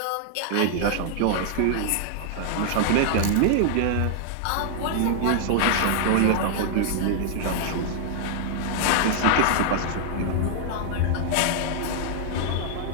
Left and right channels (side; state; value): both; different; correlation -0.01